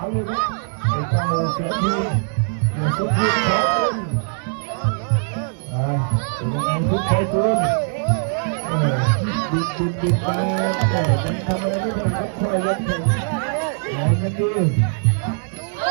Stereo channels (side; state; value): left; silent; digital silence